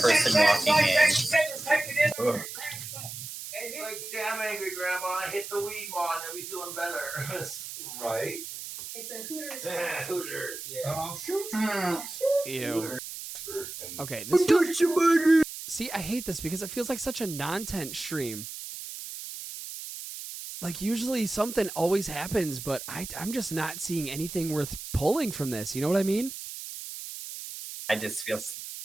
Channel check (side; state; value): right; noise; hiss, 9 dB below the sound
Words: person walking in. Ugh. Like, damn angry grandma, I hit the weed wall and I'll be feeling better. Right? It's a Hooters. Yeah, Hooters, yeah. Ew. And Okay, this feels... See, I hate this because it feels like such a nontent stream. Like, usually something always happens, but I'm just not seeing anything worth pulling from this. You know what I mean? I just